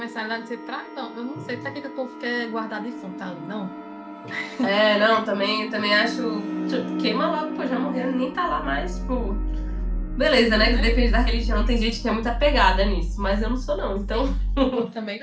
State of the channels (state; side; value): identical; both; correlation 1.00